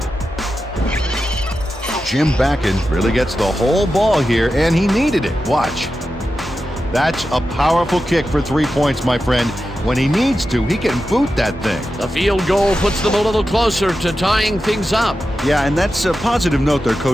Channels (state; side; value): normal; both; correlation 0.91